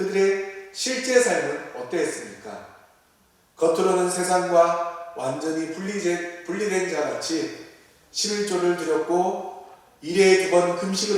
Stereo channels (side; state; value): both; identical; correlation 1.00